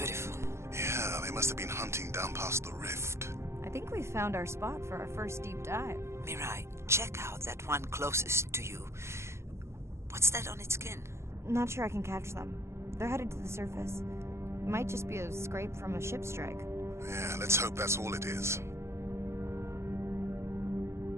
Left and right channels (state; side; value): late; left; 0.13 ms